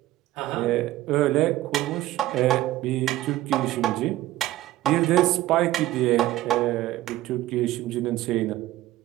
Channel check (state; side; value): quieter; left; 15.6 dB